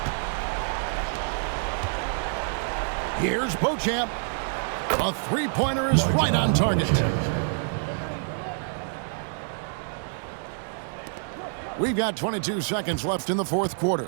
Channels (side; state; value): left; silent; 60 dB below the other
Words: Here's Beauchamp. A three-pointer is right on target. We've got 22 seconds left in the fourth quarter.